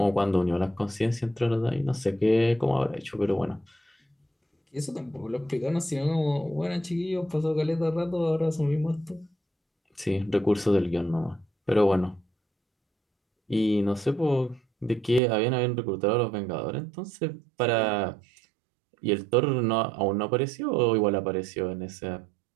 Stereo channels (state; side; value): drops out; left; at 15.2 s